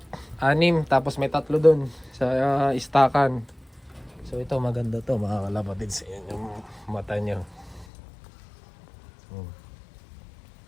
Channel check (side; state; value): right; drops out; at 7.9 s